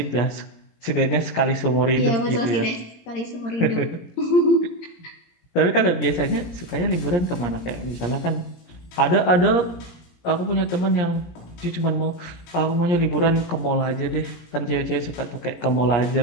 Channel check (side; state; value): right; late; 17 ms